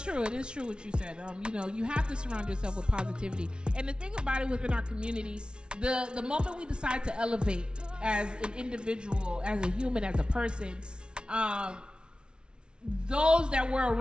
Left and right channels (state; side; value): late; left; 0.056 ms